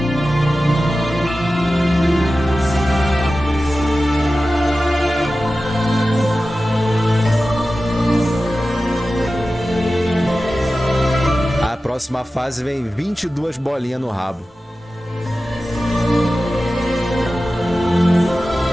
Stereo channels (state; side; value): normal; both; correlation 0.94